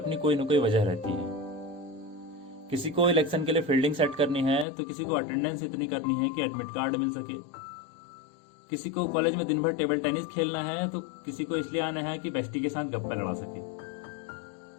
कोई न कोई वजह रहती है। किसी को इलेक्शन के लिए फील्डिंग सेट करनी है, तो किसी को अटेंडेंस इतनी करनी है कि एडमिट कार्ड मिल सके, किसी को कॉलेज में दिन भर टेबल टेनिस खेलना है, तो किसी को इसलिए आना है कि बेस्टी के साथ गप्पा लड़ा सके।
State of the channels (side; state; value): right; drops out; at 4.7 s